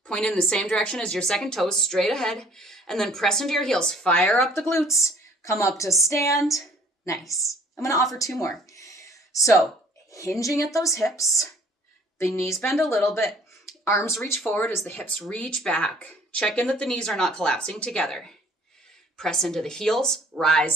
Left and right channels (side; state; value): both; normal; correlation 0.55